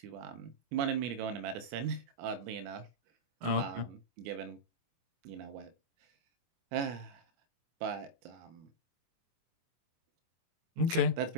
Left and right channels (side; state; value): left; late; 23 ms